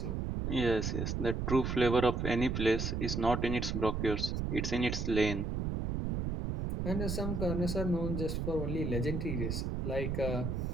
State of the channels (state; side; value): noise; right; rumble, 1 dB below the sound